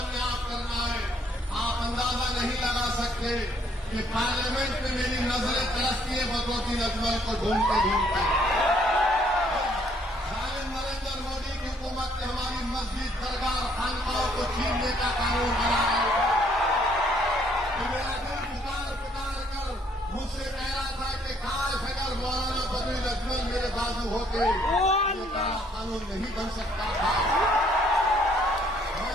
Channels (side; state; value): both; normal; correlation 0.65